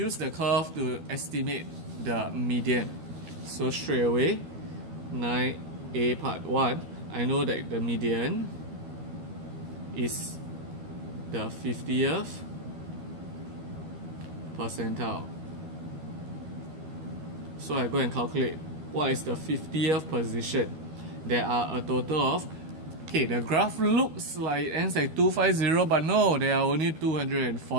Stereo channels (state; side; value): late; left; 13 ms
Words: the curve to estimate the median. So straight away, 9A part 1, I know that the median is the 50th percentile. So I go and calculate what is the 50th position. There are a total of, okay, the graph looks like it ends at 250, but no, there are only